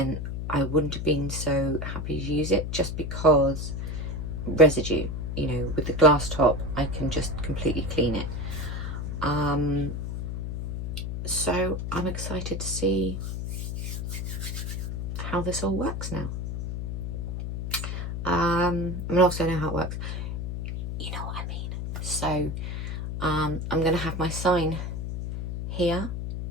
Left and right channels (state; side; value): noise; left; hum, 4 dB below the sound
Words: I wouldn't have been so happy to use it, just because residue, you know, with the glass top I can just completely clean it. So I'm excited to see how this all works now. I mean, also I know how it works, you know what I mean. So I'm going to have my sign here,